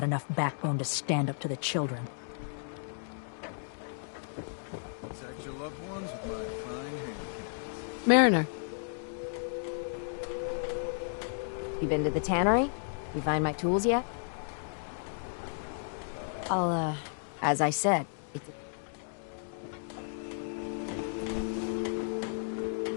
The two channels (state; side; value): silent; right; digital silence